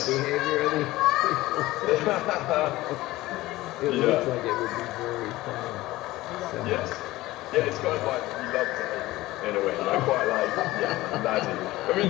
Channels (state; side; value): quieter; right; 17.9 dB